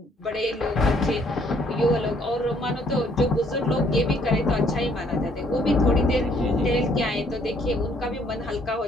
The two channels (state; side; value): normal; both; correlation 0.65